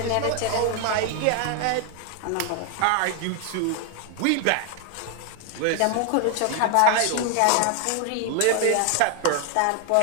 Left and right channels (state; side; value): different; both; correlation 0.00